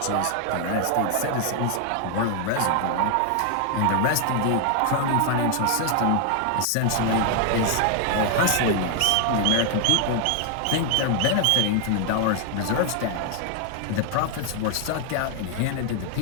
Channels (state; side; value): different; both; correlation 0.00